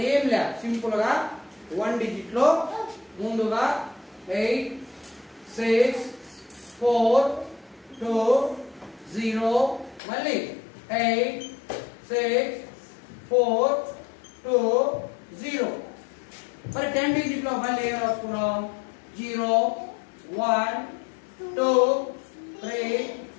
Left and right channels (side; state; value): right; drops out; at 10.0 s